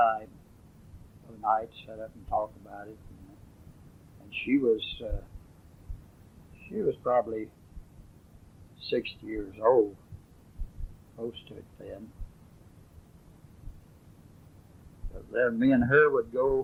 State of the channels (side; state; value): both; identical; correlation 1.00